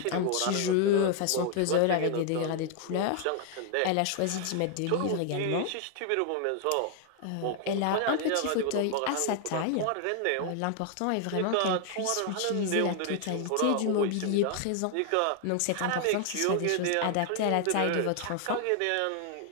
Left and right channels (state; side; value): different; both; correlation 0.00